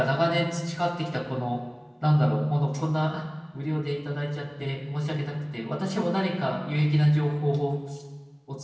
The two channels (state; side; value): identical; both; correlation 1.00